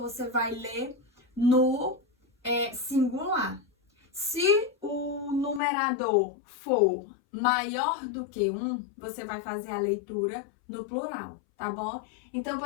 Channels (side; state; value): right; drops out; at 5.6 s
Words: vai ler no singular. Se o numerador for maior do que 1, você vai fazer a leitura no plural, tá bom? Então,